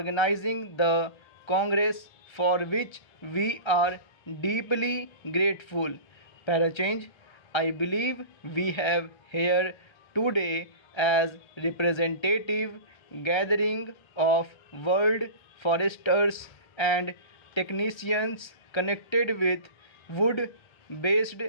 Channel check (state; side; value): late; right; 1.3 ms